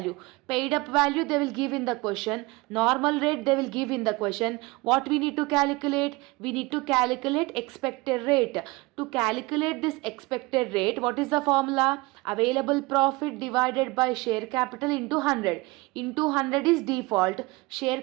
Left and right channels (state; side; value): quieter; left; 23.4 dB